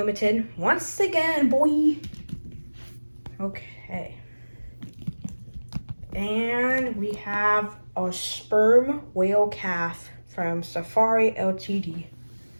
Once again, boy. Okay. And we have a sperm whale calf from Safari Ltd.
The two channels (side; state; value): both; inverted; correlation -1.00